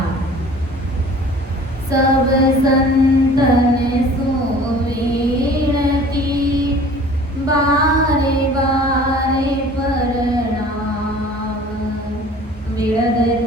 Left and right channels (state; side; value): normal; both; correlation 0.47